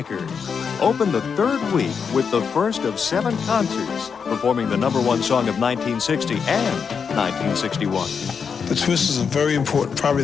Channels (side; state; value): right; quieter; 6.2 dB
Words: opened the 3rd week with the first of 7 concerts, performing the #1 song of 1960 and 1961. The Twist is a very important, probably